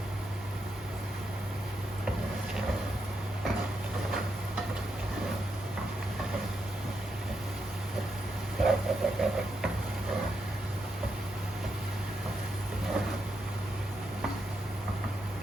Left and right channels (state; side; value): normal; both; correlation 0.82